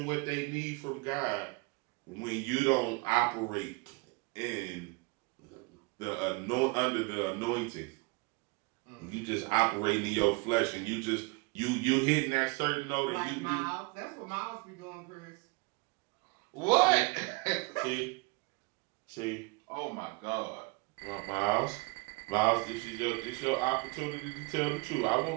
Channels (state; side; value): quieter; left; 28.6 dB